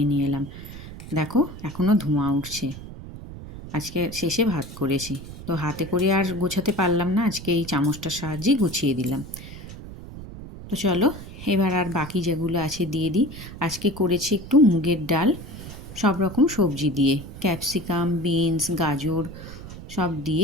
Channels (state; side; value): noise; right; rumble, 13 dB below the sound